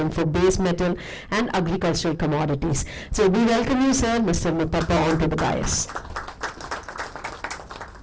for base metal and agricultural commodities. So we welcome you, sir, Mr. Muthappa, onto the dais.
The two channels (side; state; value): both; identical; correlation 1.00